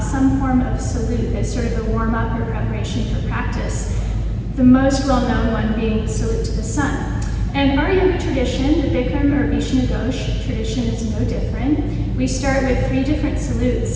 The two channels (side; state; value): both; identical; correlation 1.00